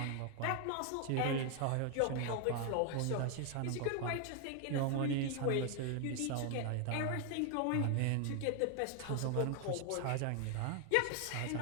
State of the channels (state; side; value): different; both; correlation 0.00